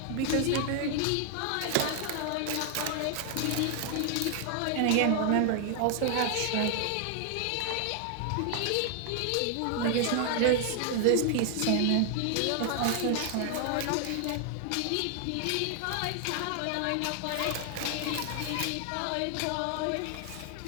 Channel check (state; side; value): different; both; correlation 0.00